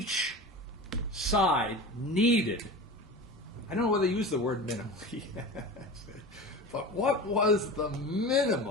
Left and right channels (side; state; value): both; normal; correlation 0.32